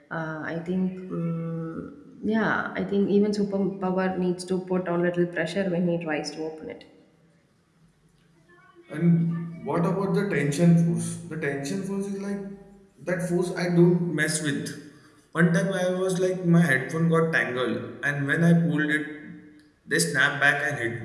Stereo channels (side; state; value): both; identical; correlation 1.00